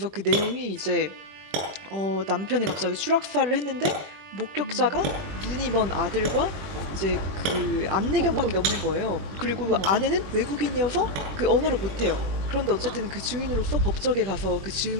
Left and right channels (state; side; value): late; left; 21 ms